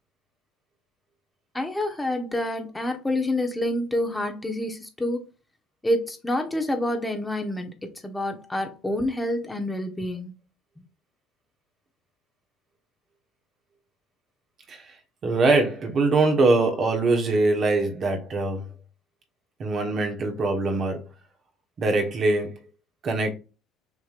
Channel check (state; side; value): normal; both; correlation 0.76